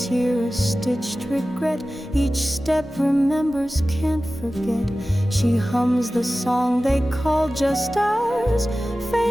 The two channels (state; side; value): normal; both; correlation 0.96